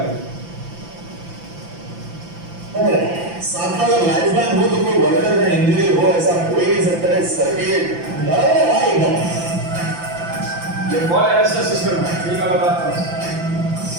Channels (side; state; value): left; late; 5.9 ms